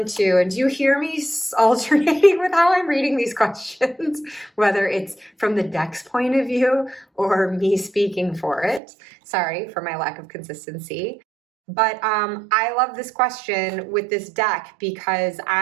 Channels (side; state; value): left; drops out; at 8.8 s